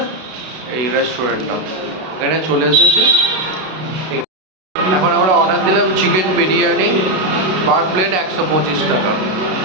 এই রেস্টুরেন্টটা। এখানে চলে এসেছি। এখন আমরা অর্ডার দিলাম চিকেন বিরিয়ানি, পার প্লেট 125 টাকা।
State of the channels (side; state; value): left; late; 32 ms